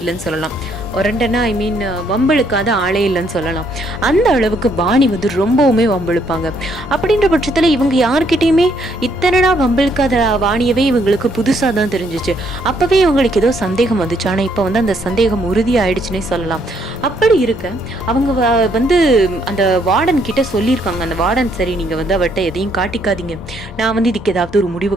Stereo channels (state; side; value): normal; both; correlation 0.70